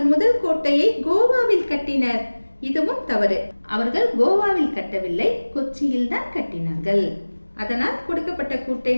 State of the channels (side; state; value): both; inverted; correlation -1.00